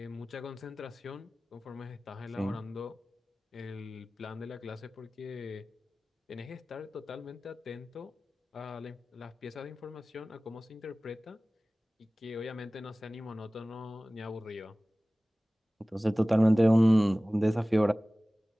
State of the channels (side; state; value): both; normal; correlation 0.98